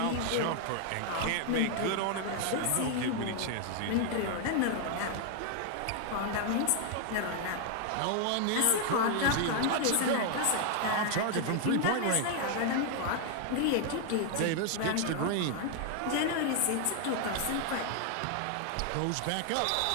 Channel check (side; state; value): both; different; correlation 0.00